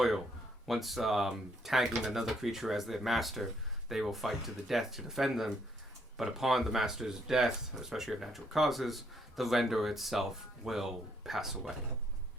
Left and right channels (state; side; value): normal; both; correlation 0.71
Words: Once tagging another creature as their master, they will fight to the death to defend them. But upon the master's death, especially of natural causes, the Renderer itself will pass away.